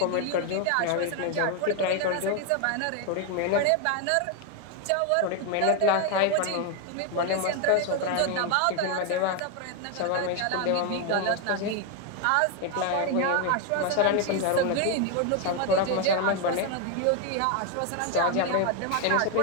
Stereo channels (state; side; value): different; both; correlation 0.01